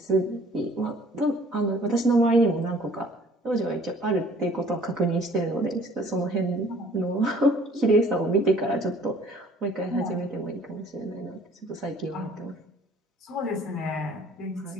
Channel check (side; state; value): both; normal; correlation 0.54